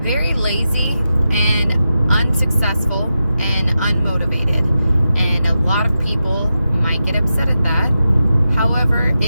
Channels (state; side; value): inverted; both; correlation -0.90